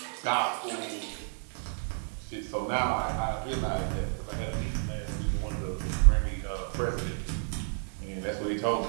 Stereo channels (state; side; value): silent; left; 57 dB below the other